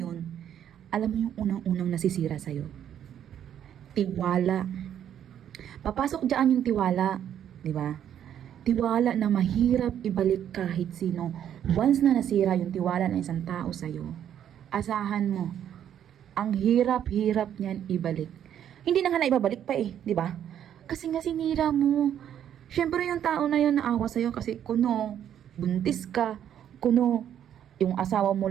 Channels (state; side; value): quieter; left; 9.9 dB